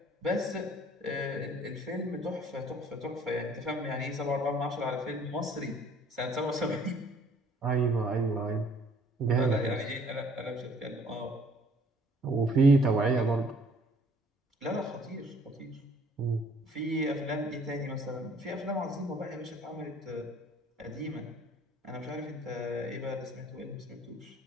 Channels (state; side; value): normal; both; correlation 0.58